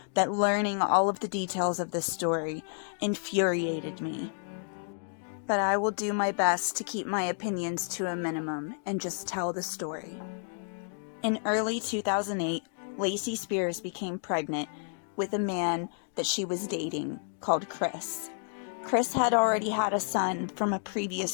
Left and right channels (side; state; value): right; silent; digital silence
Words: that learning all of the details of this story infuriated me. But I will do my best to keep my opinions to a minimum and just tell the story. In early 2008, Lacey Spears became pregnant with a man that she was dating called Chris. Chris had already had a son from a